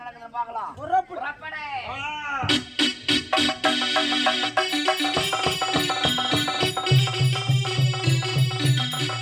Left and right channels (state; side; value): identical; both; correlation 1.00